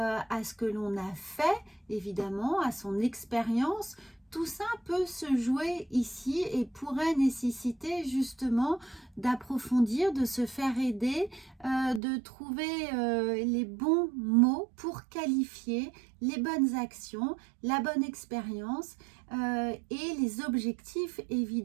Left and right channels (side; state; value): left; drops out; at 12.0 s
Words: ce que l'on a fait, évidemment, à son expérience? Tout ça peut se jouer ici et pourrait nécessiter justement d'approfondir, de se faire aider, de trouver les bons mots pour qualifier les bonnes actions, la bonne expérience et les objectifs